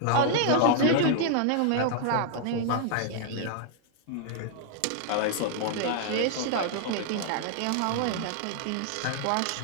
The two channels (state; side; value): different; both; correlation -0.01